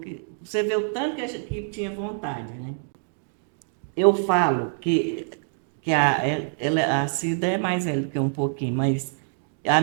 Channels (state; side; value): silent; left; digital silence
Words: Você vê o tanto que tinha vontade, né? Eu falo que a Cida é mais velha do que um pouquinho, mas a